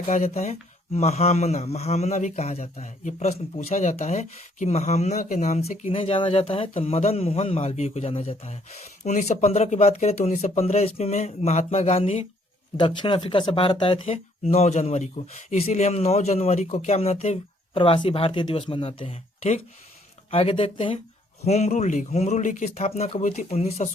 कहा जाता है? महामना, महामना भी कहा जाता है। ये प्रश्न पूछा जाता है कि महामना के नाम से किन्हें जाना जाता है? तो मदन मोहन मालवीय को जाना जाता है। 1915 की बात करें तो 1915 ईस्वी में महात्मा गांधी दक्षिण अफ्रीका से भारत आए थे 9 जनवरी को। इसीलिए हम 9 जनवरी को क्या मनाते हैं? प्रवासी भारतीय दिवस मनाते हैं। ठीक, आगे देखते हैं होम रूल लीग की स्थापना कब हुई थी?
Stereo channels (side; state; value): both; normal; correlation 0.66